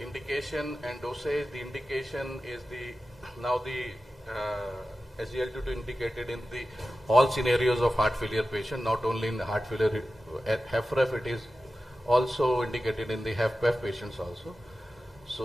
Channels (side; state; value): both; normal; correlation 0.94